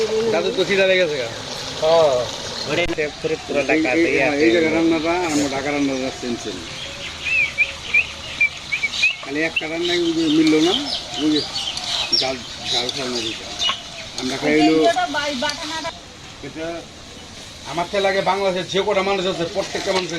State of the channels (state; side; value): identical; both; correlation 1.00